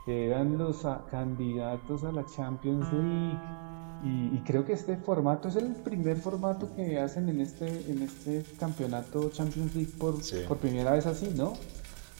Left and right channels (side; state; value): left; silent; 55 dB below the other